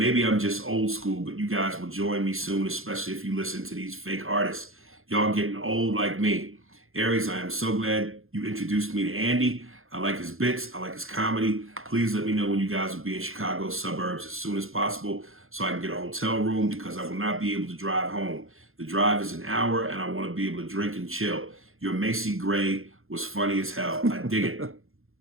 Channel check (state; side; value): late; left; 0.61 ms